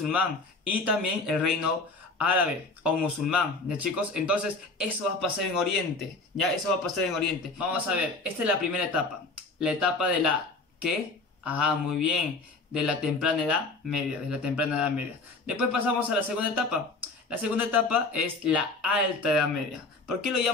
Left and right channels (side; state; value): right; quieter; 3.5 dB